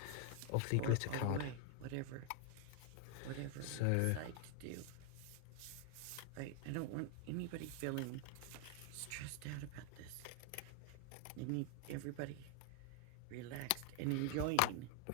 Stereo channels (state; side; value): different; both; correlation 0.00